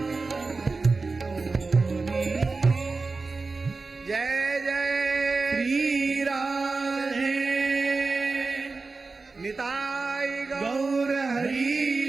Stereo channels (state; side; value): quieter; left; 3.9 dB